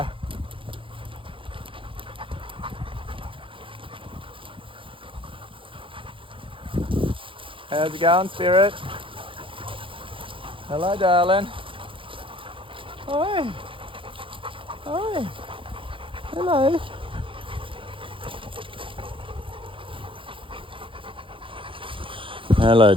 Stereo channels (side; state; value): left; late; 0.25 ms